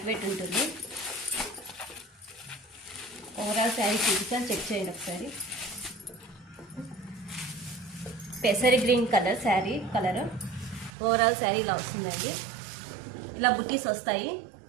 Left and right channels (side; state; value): left; drops out; at 10.9 s